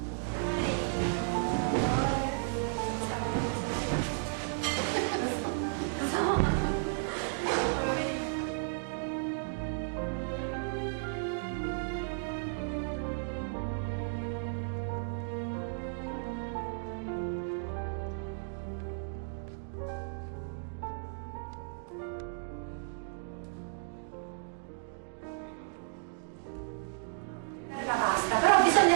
La pasta, però bisogna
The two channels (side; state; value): left; silent; digital silence